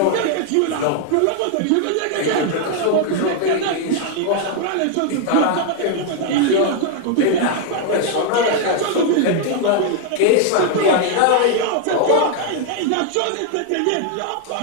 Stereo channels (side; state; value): both; different; correlation 0.00